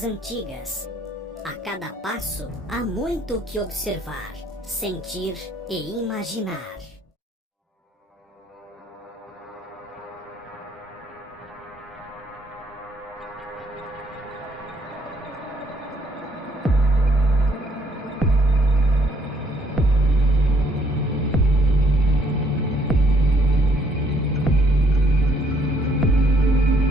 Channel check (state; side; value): normal; both; correlation 0.66